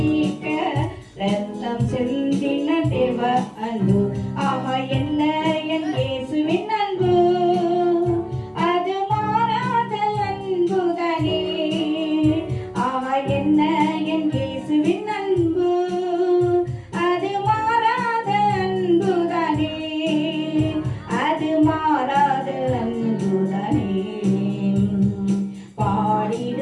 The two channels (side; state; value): both; identical; correlation 1.00